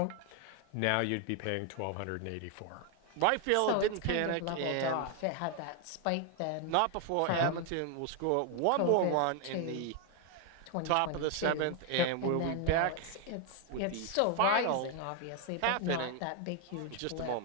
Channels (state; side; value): different; both; correlation 0.01